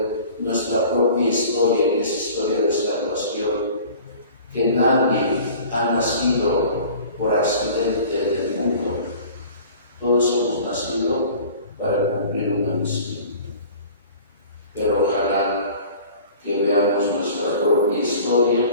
nuestra propia historia, que es historia de salvación, que nadie ha nacido por accidente en el mundo, todos hemos nacido para cumplir una misión. Pero ojalá que veamos nuestra propia historia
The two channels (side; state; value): both; inverted; correlation -0.44